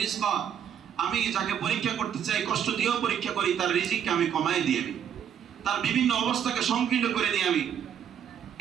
রিজকা। আমি যাকে পরীক্ষা করতে চাই, কষ্ট দিয়েও পরীক্ষা করি, তার রিজিককে আমি কমায় দিই, আমি তার বিভিন্ন অবস্থাকে সংকীর্ণ করে দিই আমি।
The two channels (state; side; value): quieter; left; 8.9 dB